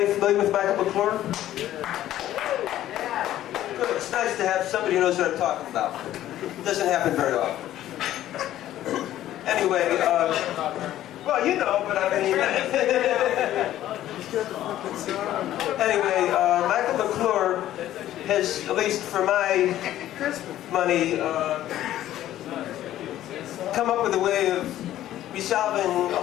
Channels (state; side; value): quieter; right; 13.1 dB